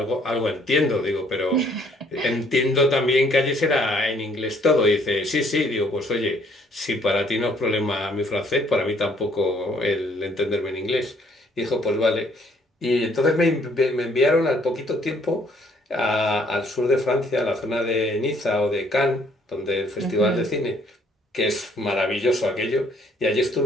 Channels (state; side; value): normal; both; correlation 0.64